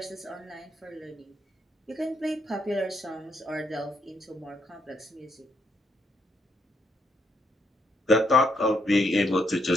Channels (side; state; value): both; normal; correlation 0.75